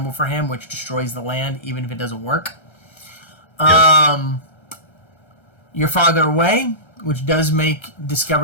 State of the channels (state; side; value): late; right; 1.3 ms